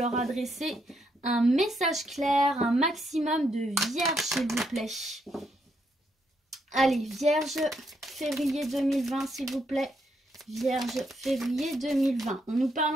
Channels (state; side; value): normal; both; correlation 0.77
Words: adresser un message clair, un maximum de vierges, s'il vous plaît. Allez, Vierge, février 2020, s'il vous plaît. Vierge, février 2020. On nous